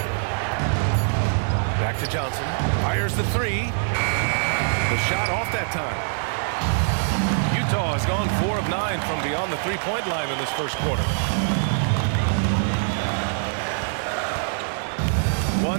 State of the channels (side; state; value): left; silent; digital silence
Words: Back to Johnson. Fires the 3. The shot off that time. Utah has gone 4 of 9 from beyond the 3-point line in this 1st quarter.